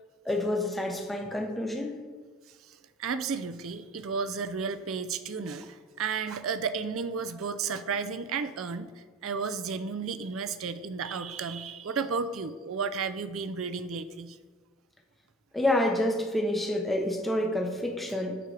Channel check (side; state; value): both; normal; correlation 0.43